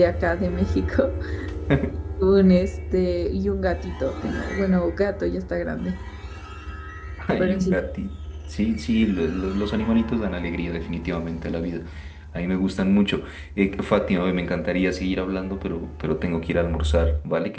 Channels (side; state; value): both; identical; correlation 1.00